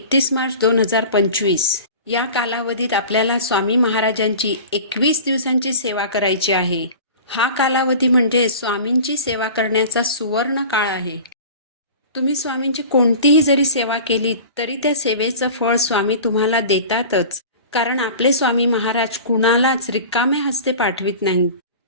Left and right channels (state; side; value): inverted; both; correlation -0.38